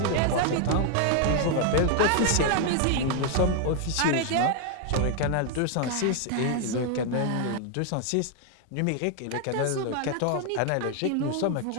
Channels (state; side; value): different; both; correlation 0.00